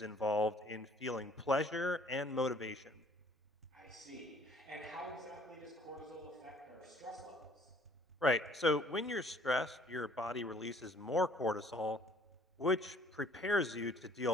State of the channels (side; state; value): both; normal; correlation 0.57